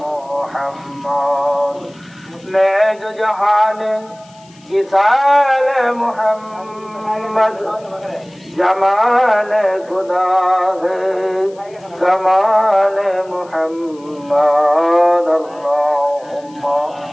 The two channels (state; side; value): noise; left; hiss, 28 dB below the sound